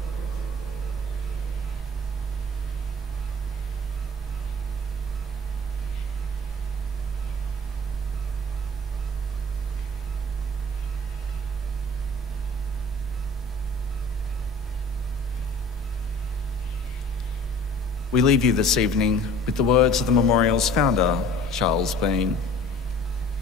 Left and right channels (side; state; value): both; normal; correlation 0.46